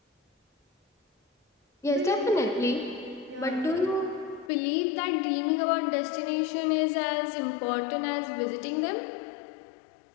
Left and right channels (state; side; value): drops out; right; at 4.5 s